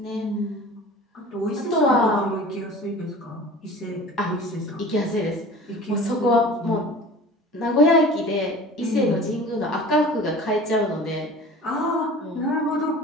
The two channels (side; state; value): both; normal; correlation 0.41